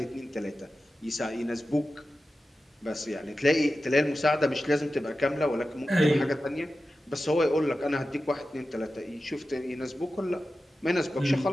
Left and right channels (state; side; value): normal; both; correlation 0.93